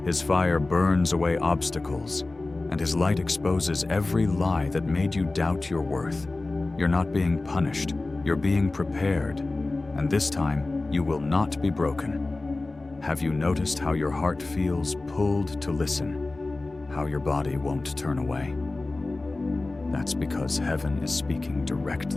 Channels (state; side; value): quieter; right; 3.2 dB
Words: His fire burns away obstacles, and his light exposes every lie that made you doubt your worth. You're not being punished, you're being prepared, and this time you will not be broken. Have you noticed how your heart feels pulled to listen, how your body won't turn away? That's because heaven is speaking